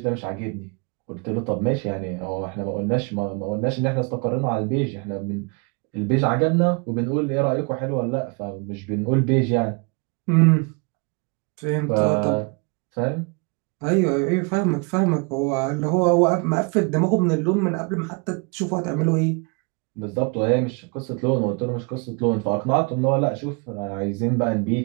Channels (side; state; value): left; quieter; 32.7 dB